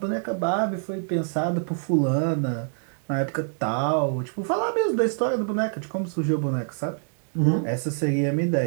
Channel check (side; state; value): left; silent; digital silence